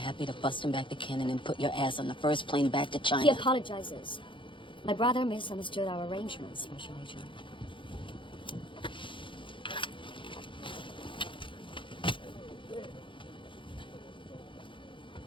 to bust him back to Cannon and put your ass on the first plane back to China. He apologizes. My brother misunderstood our arrangements, Special Agent.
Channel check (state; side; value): late; right; 0.24 ms